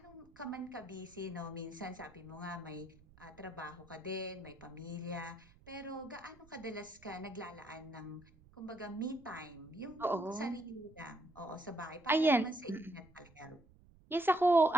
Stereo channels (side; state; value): right; noise; rumble, 25 dB below the sound